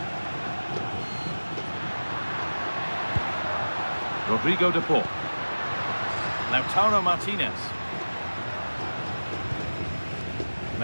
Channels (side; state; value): both; inverted; correlation -1.00